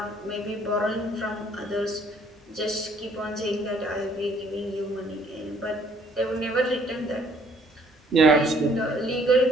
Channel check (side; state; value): both; normal; correlation 0.62